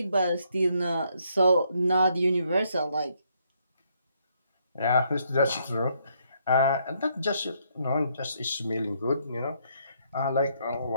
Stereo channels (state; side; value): inverted; both; correlation -0.72